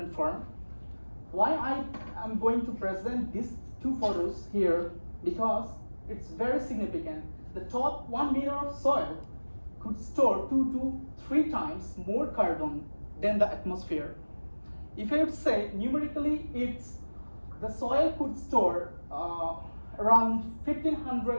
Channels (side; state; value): both; inverted; correlation -1.00